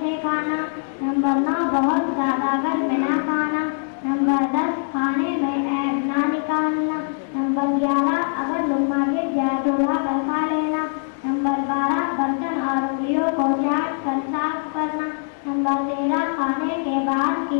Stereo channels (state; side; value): silent; right; digital silence